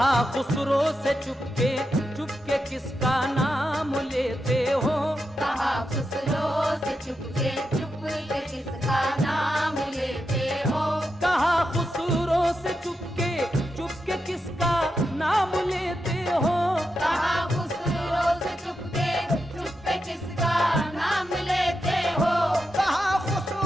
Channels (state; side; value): normal; both; correlation 0.87